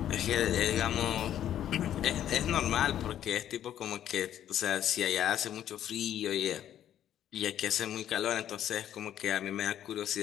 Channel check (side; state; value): right; quieter; 10.9 dB